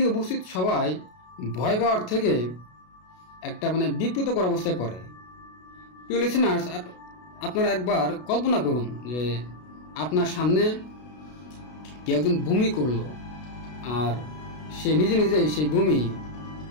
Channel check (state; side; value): late; right; 33 ms